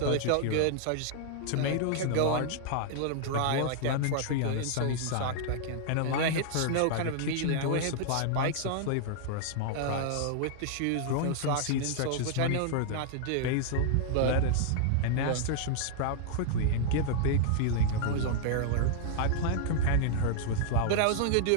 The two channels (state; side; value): different; both; correlation -0.01